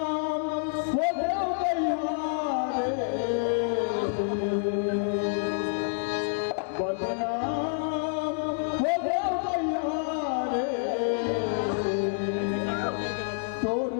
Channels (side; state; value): right; silent; 58 dB below the other